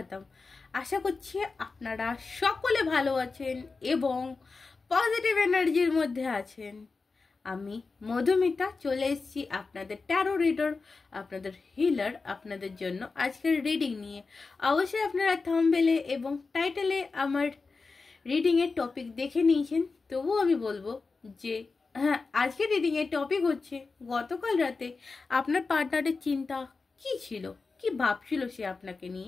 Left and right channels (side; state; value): right; quieter; 4.2 dB